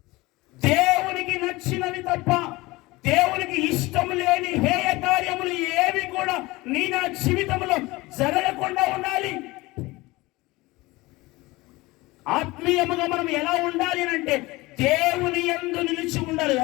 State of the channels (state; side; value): quieter; right; 21.3 dB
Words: దేవునికి నచ్చినవి తప్ప దేవునికి ఇష్టం లేని హేయ కార్యములు ఏవి కూడా నీ నా జీవితంలో జరగకుండా ఉండాలి. ఆత్మీయముగా మనం ఎలా ఉండాలి అంటే దేవుని యందు నిలిచి ఉండాలి.